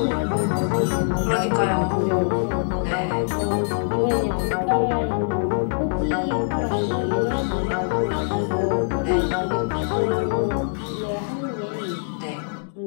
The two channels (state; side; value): silent; right; digital silence